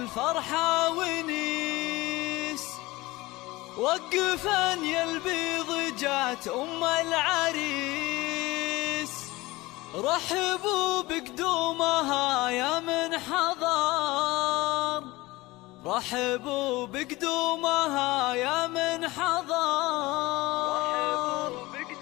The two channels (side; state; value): right; quieter; 20.4 dB